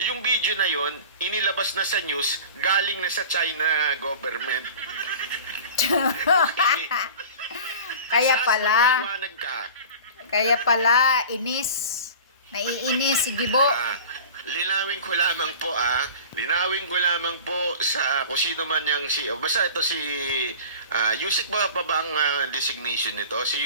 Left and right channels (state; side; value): inverted; both; correlation -0.38